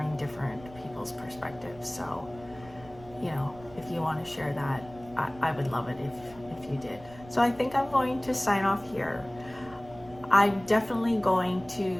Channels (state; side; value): noise; right; rumble, 20 dB below the sound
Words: different people's perspectives. So, you know, if you want to share that, I would love it if you did. So I think I'm going to sign off here. I'm definitely going